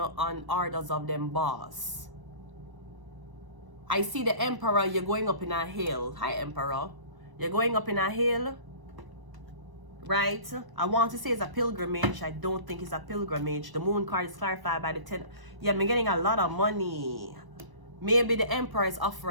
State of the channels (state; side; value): late; left; 1.0 ms